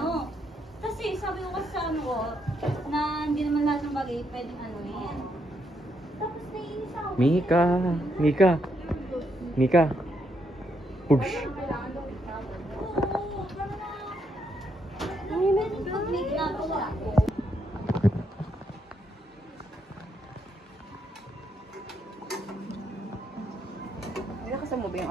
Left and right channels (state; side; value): normal; both; correlation 0.77